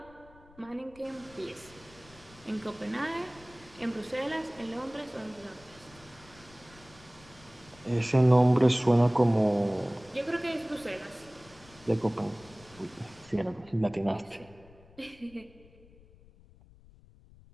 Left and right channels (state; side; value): noise; left; rumble, 24 dB below the sound